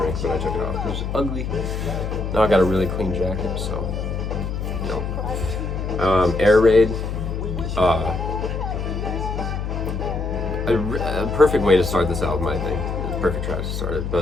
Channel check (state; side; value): noise; left; hum, 4 dB below the sound